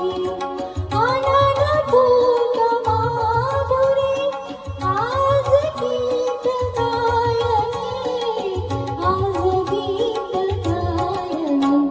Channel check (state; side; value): identical; both; correlation 1.00